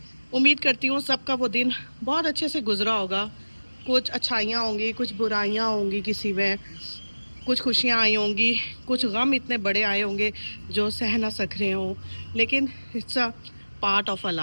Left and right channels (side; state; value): both; inverted; correlation -1.00